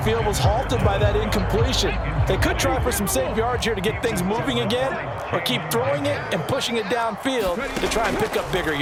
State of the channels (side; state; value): both; identical; correlation 1.00